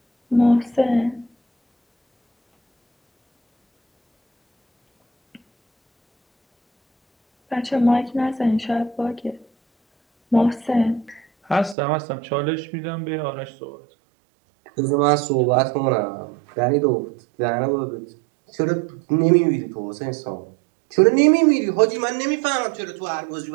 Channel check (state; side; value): drops out; left; at 11.8 s